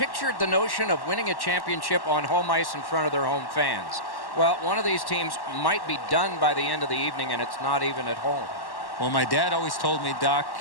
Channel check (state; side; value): late; right; 1.1 ms